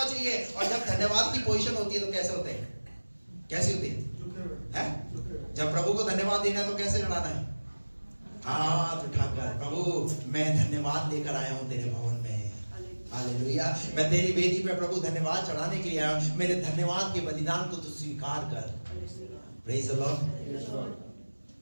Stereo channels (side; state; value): both; inverted; correlation -1.00